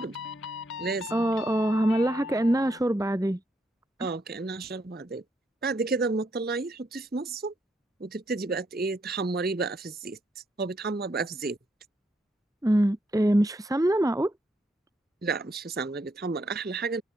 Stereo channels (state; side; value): normal; both; correlation 0.76